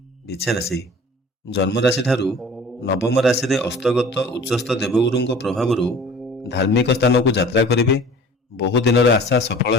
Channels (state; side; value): normal; both; correlation 0.45